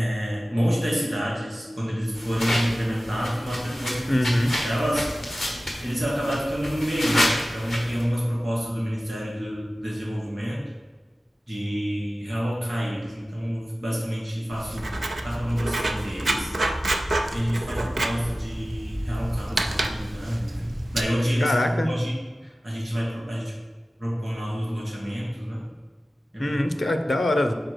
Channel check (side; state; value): both; normal; correlation 0.96